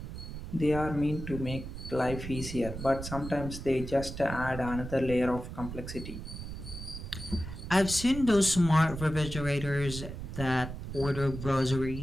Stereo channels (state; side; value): noise; right; rumble, 8 dB below the sound